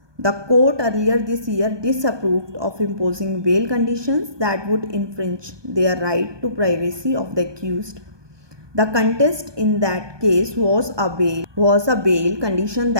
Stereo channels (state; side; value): late; left; 1.2 ms